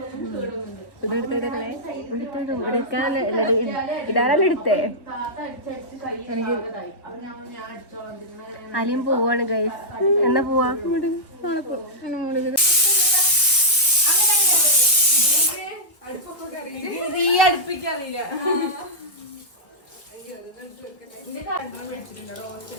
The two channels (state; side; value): late; right; 1.4 ms